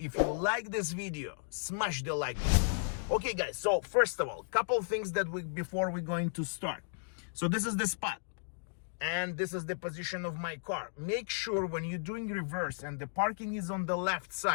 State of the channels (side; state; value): right; silent; digital silence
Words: you like this video, smash the like button. Okay, guys, so first of all, couple things that before we're going to start. So this is the spot and this is the position of my car. Make sure when you're doing reverse and the parking is on the left